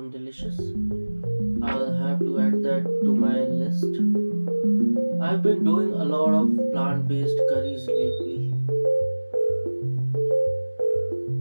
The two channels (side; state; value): both; inverted; correlation -1.00